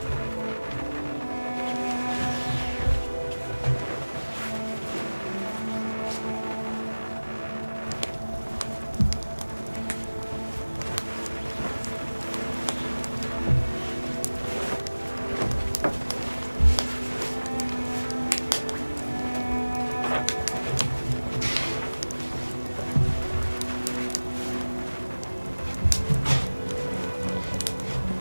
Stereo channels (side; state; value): both; inverted; correlation -1.00